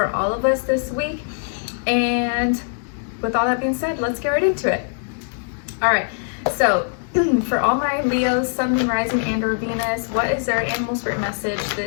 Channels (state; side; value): silent; right; digital silence